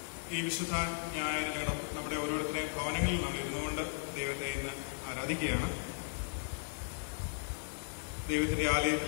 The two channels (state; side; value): silent; right; digital silence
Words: ഈ വിശുദ്ധ ഞായർ നമ്മുടെ ഓരോരുത്തരെയും ഭവനങ്ങളിൽ നമ്മൾ ഇരുന്നുകൊണ്ട് ദൈവത്തെ ഇന്ന് ആരാധിക്കുകയാണ്. ദൈവത്തിന്റെ